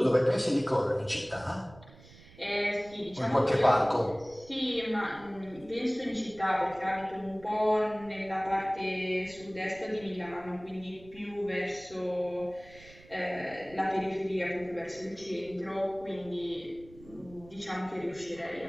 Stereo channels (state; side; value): noise; right; rumble, 21 dB below the sound